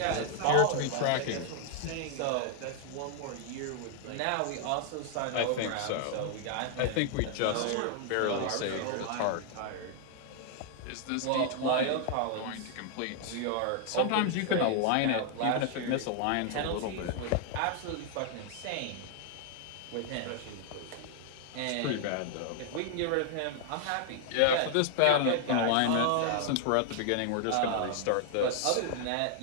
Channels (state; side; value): different; both; correlation 0.00